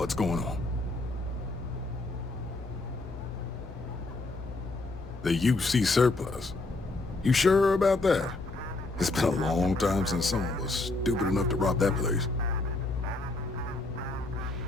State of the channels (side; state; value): right; quieter; 3.1 dB